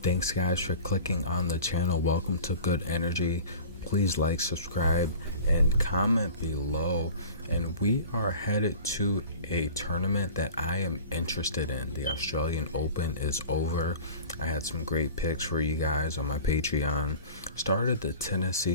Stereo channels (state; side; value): inverted; both; correlation -0.40